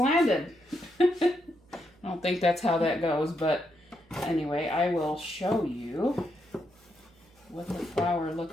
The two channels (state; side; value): noise; right; hum, 30 dB below the sound